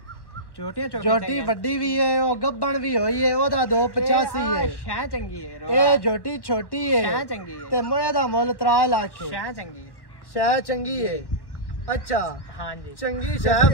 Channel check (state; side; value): late; right; 1.1 ms